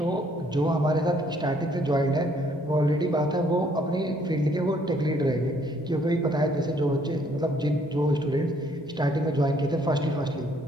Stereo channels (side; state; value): both; normal; correlation 0.65